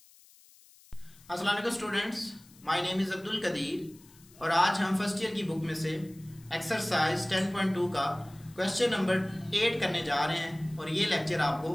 अस्सलाम वालेकुम students, my name is Abdul Qadir और आज हम first year की book में से एक्सरसाइज 10.2 का क्वेश्चन नंबर 8 करने जा रहे हैं और ये लेक्चर आपको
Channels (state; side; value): noise; left; hiss, 26 dB below the sound